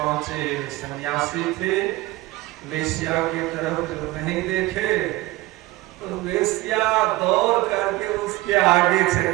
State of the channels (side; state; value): left; quieter; 18.9 dB